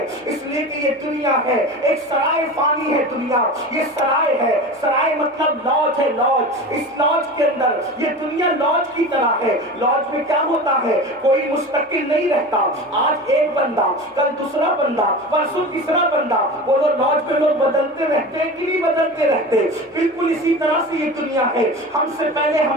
اس لیے کہ یہ دنیا ہے ایک سرائے فانی ہے. دنیا یہ سرائے ہے, سرائے مطلب لاج ہے. لاج, اس لاج کے اندر یہ دنیا لاج کی طرح ہے. لاج میں کیا ہوتا ہے, کوئی مستقل نہیں رہتا. آج ایک بندہ, کل دوسرا بندہ, پرسوں تیسرا بندہ. وہ لاج میں لوگ بدلتے رہتے ہیں کہ نہیں بدلتے رہتے. بالکل اسی طرح سے یہ دنیا ہے. ہم سے پہلے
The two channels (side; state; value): both; normal; correlation 0.31